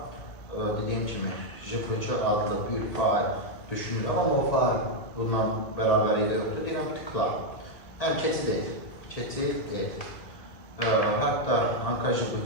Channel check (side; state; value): right; late; 2.0 ms